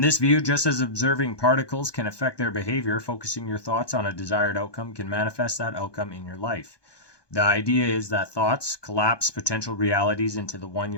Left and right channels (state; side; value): late; right; 1.2 ms